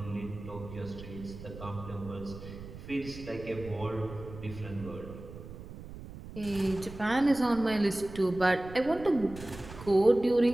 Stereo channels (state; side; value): noise; right; rumble, 13 dB below the sound